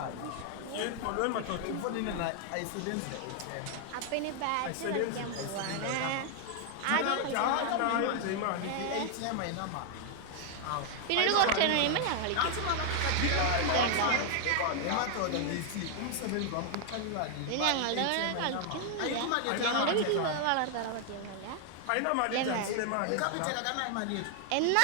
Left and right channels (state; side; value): different; both; correlation 0.00